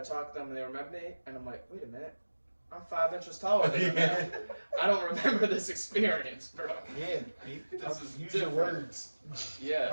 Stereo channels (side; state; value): both; inverted; correlation -1.00